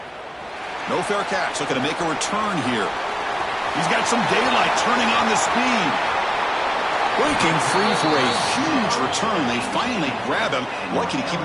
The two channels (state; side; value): identical; both; correlation 1.00